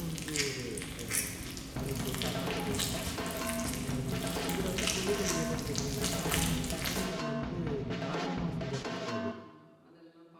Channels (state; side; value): identical; both; correlation 1.00